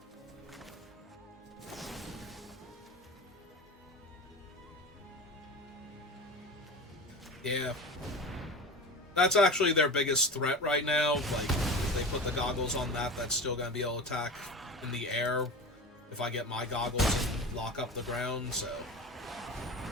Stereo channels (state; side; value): normal; both; correlation 0.31